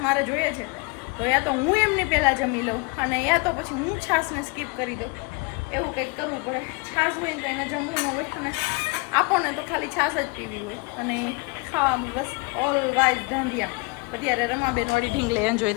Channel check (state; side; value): quieter; right; 29.3 dB